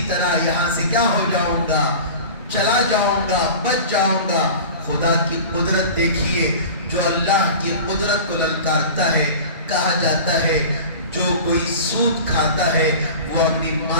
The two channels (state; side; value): inverted; both; correlation -0.36